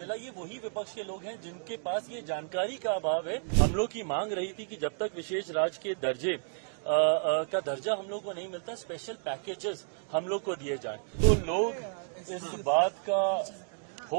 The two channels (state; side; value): silent; left; digital silence